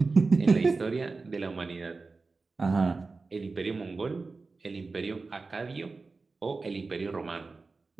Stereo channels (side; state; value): left; quieter; 4.0 dB